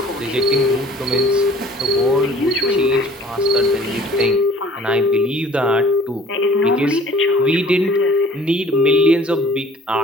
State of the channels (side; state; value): both; normal; correlation 0.52